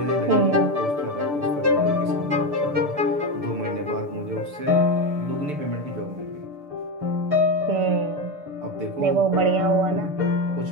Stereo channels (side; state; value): left; late; 6.8 ms